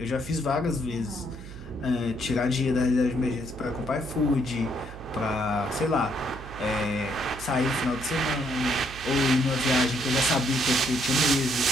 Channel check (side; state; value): right; noise; hum, 14 dB below the sound